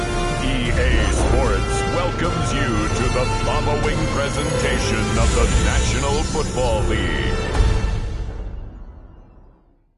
EA Sports welcomes you to the following presentation of the National Football League.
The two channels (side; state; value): both; identical; correlation 1.00